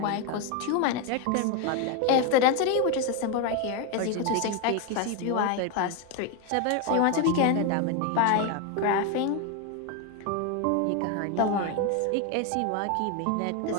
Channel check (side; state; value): both; different; correlation 0.02